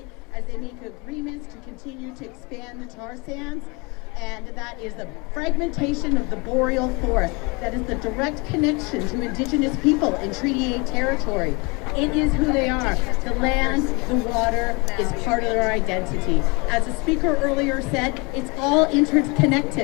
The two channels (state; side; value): quieter; right; 28.4 dB